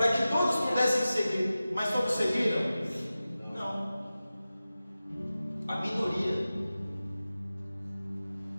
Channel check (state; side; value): inverted; both; correlation -0.95